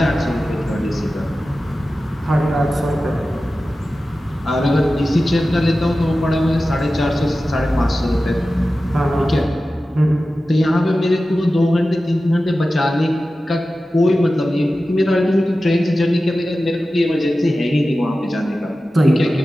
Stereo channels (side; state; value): both; normal; correlation 0.94